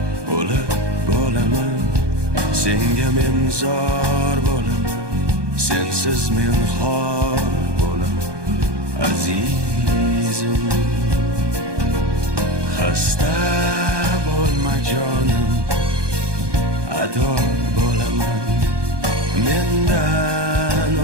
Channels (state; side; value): late; left; 1.2 ms